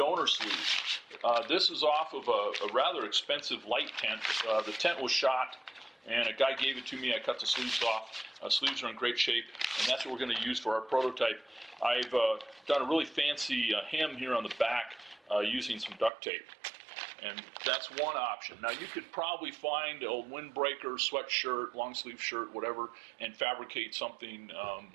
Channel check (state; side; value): drops out; left; at 16.1 s